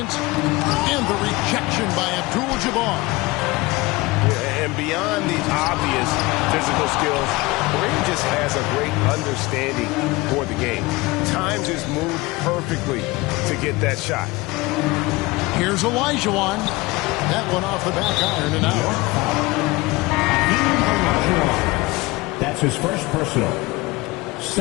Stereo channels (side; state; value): right; quieter; 22.1 dB